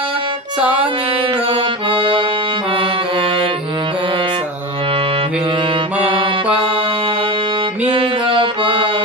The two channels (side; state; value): both; normal; correlation 0.26